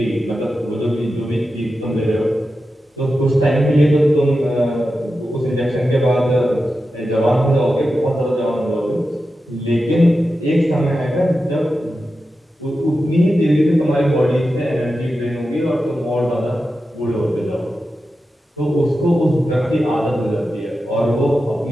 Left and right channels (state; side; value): normal; both; correlation 0.91